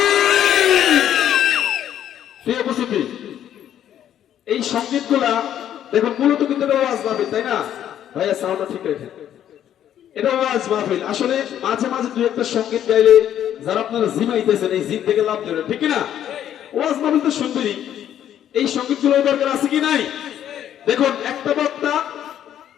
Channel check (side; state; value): right; quieter; 10.6 dB